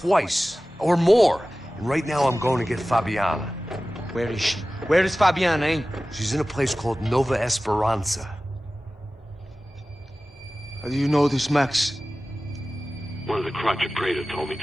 or more. And right now I'm going to get Fabiana. Where is she? Where is Fabiana, eh? She's in a place called Nova Esperanza. How do you know this, Max? One of the Crotch of Prado told me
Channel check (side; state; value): both; normal; correlation 0.96